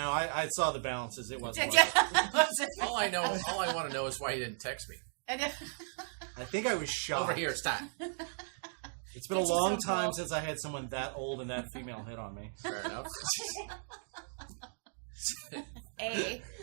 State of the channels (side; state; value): left; silent; digital silence